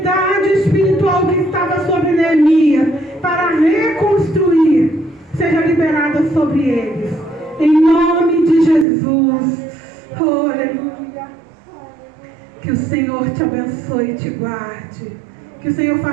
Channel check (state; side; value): drops out; left; at 8.8 s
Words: espiritual que estava sobre Neemias para reconstruir seja liberada sobre eles. Em nome de Jesus. Oh, aleluia. Que o Senhor te abençoe e te guarde. Que o Senhor